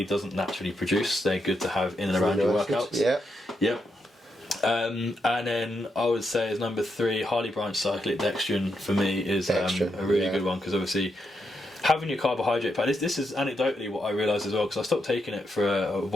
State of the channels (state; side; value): normal; both; correlation 0.82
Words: doesn't naturally produce. They're good to have in and around your workouts. And then I would say as number three, highly branched cyclic dextrin for me is a really good one, because obviously having your carbohydrate pack, this is anecdotally what I realised as well, because I stopped taking it for a